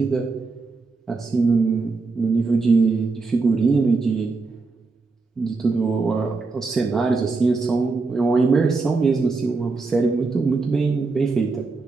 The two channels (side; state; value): left; quieter; 4.0 dB